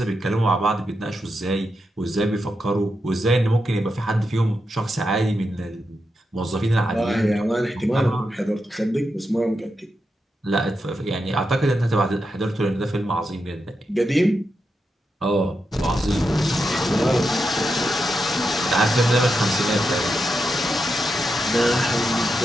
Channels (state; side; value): normal; both; correlation 0.86